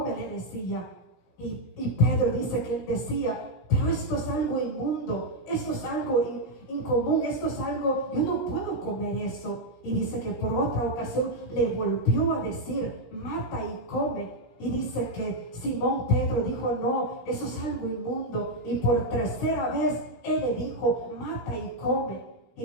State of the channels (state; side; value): late; right; 17 ms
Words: le decía. Y Pedro dice que él decía: pero esto es algo inmundo, esto es algo incomún, esto es algo, yo no puedo comer eso. Y dice que por otra ocasión le volvió a decir: mata y come. Y dice que Simón Pedro dijo: no, eso es algo inmundo. Y por tercera vez él le dijo: mata y come. Y